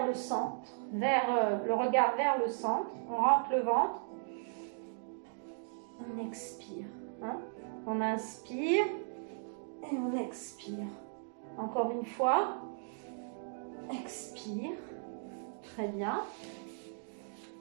le centre, le regard vers le centre, on rentre le ventre, on expire, hein? On inspire et on expire. Encore une fois, expire, très bien.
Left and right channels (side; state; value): left; silent; digital silence